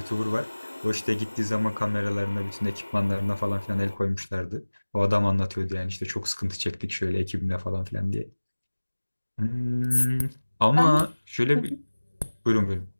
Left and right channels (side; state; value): both; inverted; correlation -1.00